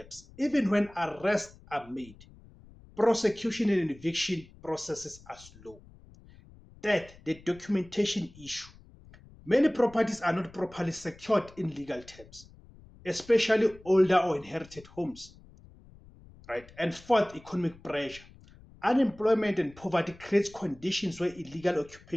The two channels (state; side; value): noise; left; rumble, 23 dB below the sound